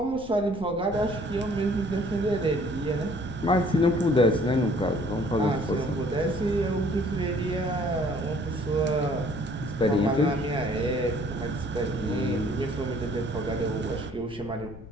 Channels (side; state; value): left; noise; rumble, 16 dB below the sound